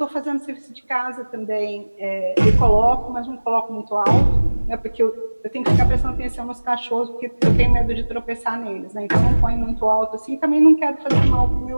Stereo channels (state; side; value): inverted; both; correlation -1.00